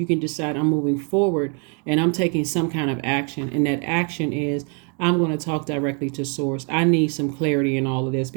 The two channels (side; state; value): left; quieter; 38.0 dB